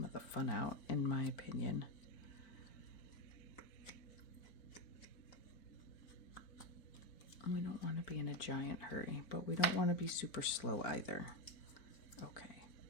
of the fun out, in my opinion. We don't want to be in a giant hurry, but we don't want to be super slow either. Okay,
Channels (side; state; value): right; late; 4.6 ms